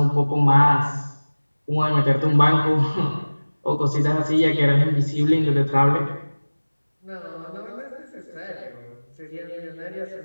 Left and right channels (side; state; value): both; inverted; correlation -1.00